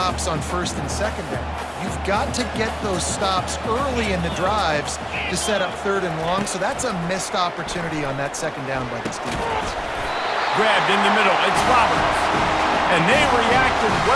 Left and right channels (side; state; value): both; identical; correlation 1.00